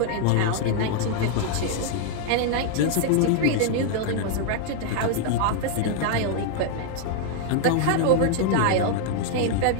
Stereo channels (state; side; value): different; both; correlation 0.00